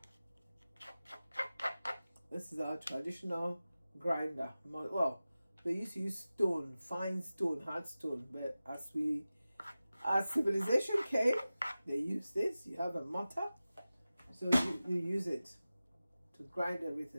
This is our traditional grinder. Well, they used to use stone, fine stone, hard stone, but as civilization came, they used this. You have a mortar, so you use it to grind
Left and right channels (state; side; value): inverted; both; correlation -0.96